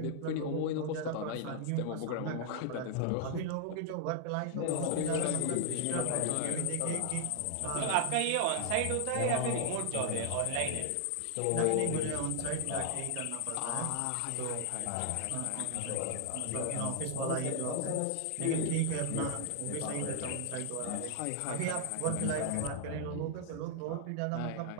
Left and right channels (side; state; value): both; different; correlation 0.00